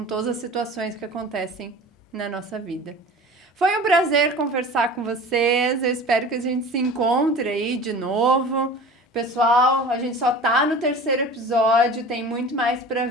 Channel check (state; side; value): normal; both; correlation 0.39